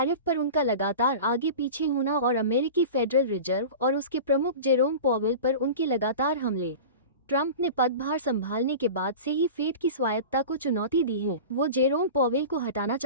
पर उनका लगातार आगे पीछे होना और अमेरिकी फेडरल रिजर्व और उसके प्रमुख जेरोम पॉवेल पर उनके लगातार हमले। ट्रंप ने पदभार संभालने के बाद से ही फेड की स्वायत्तता को चुनौती दी है। वो जेरोम पॉवेल को हटाना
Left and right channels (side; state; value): both; inverted; correlation -0.33